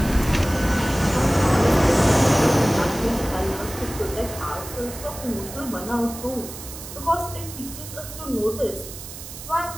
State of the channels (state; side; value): noise; right; hiss, 12 dB below the sound